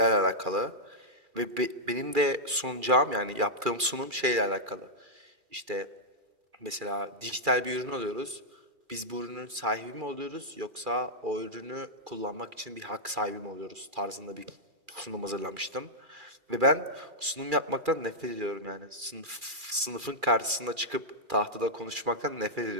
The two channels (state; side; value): late; left; 2.4 ms